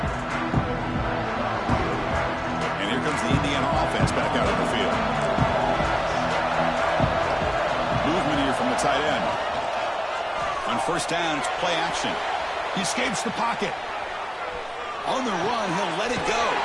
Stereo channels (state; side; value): identical; both; correlation 1.00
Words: And here comes the Indiana offense back out on the field. Movement here from the tight end. On first down, it's play action. He escapes the pocket. On the run, he'll let it go.